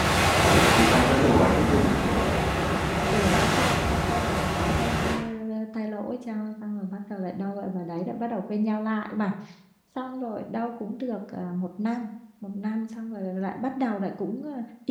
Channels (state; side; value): identical; both; correlation 1.00